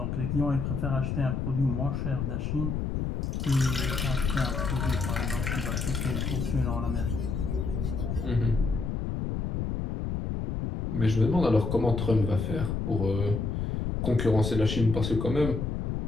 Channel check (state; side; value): noise; left; rumble, 2 dB below the sound